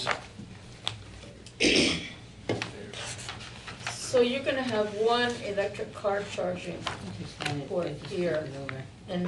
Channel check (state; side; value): identical; both; correlation 1.00